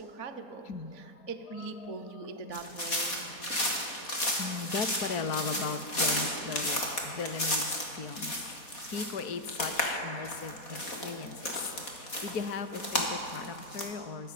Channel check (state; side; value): late; right; 4.2 ms